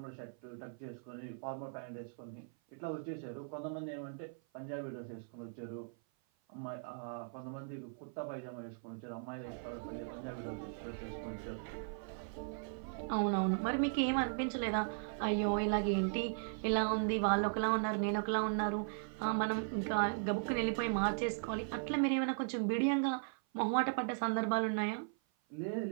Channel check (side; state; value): left; silent; 52 dB below the other